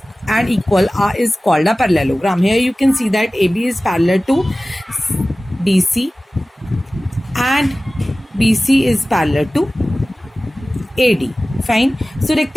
and equal is called a parallelogram. Here you can see that AB is parallel to BC and BC is parallel to AD. Fine. So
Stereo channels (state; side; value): normal; both; correlation 0.97